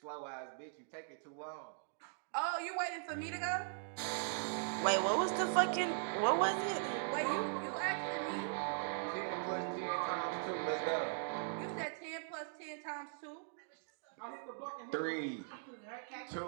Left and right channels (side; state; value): left; silent; digital silence